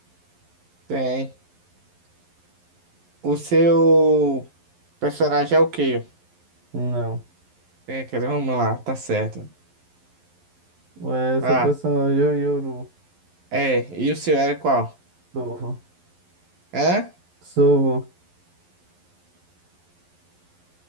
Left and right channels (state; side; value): late; left; 11 ms